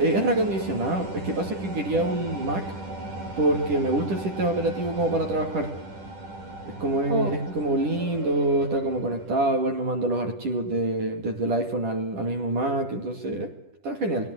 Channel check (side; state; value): left; late; 10 ms